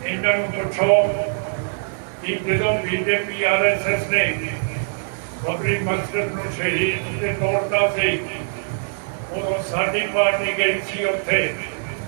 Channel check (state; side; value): silent; left; digital silence